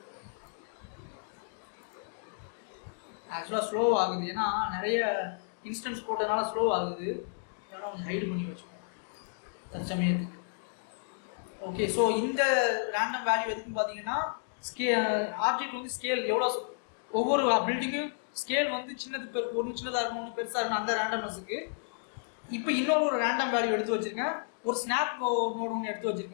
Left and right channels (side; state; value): right; silent; digital silence